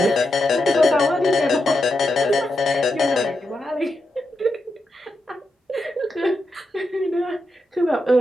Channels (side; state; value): both; normal; correlation 0.86